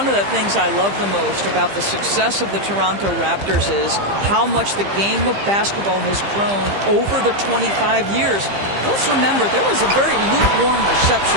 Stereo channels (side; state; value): left; late; 15 ms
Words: of the things I love the most about the success of the Toronto Raptors is how much the game of basketball has grown over the 25 years. Let's remember, there was a very lukewarm